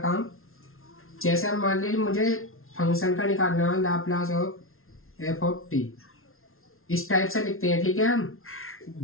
जैसे हम मान लीजिए मुझे फंक्शन का निकालना है Laplace of F of T, इस टाइप से लिखते हैं, ठीक है हम।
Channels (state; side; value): late; right; 0.62 ms